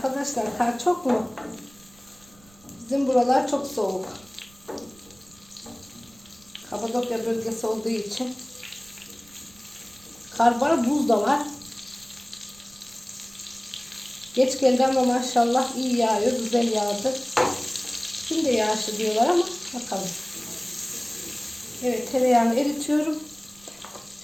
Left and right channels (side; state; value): right; noise; rumble, 27 dB below the sound